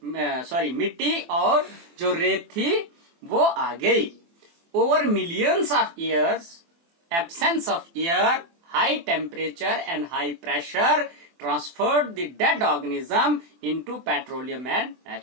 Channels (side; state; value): left; late; 24 ms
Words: और जो रेत थी वो आ गई. Over millions of years, absence of air, high temperature and high pressure transferred the dead organism into petroleum and